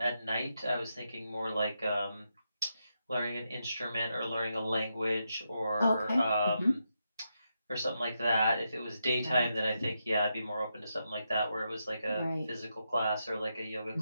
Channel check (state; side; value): inverted; both; correlation -0.84